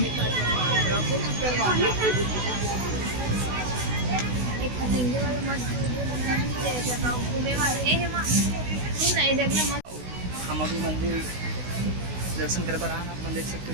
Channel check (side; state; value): left; late; 16 ms